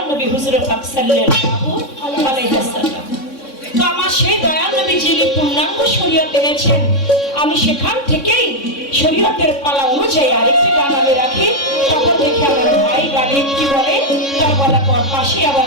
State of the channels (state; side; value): late; right; 3.6 ms